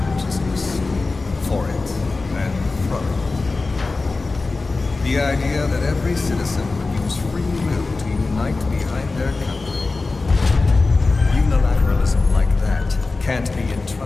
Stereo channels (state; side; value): quieter; right; 3.6 dB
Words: for it and from it. The idea that every citizen would use free will to unite behind their country. Unilateralism like that can't be